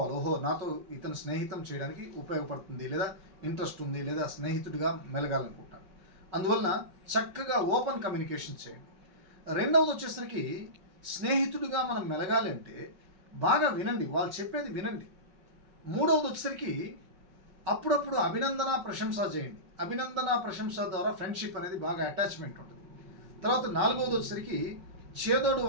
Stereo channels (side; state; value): left; late; 5.3 ms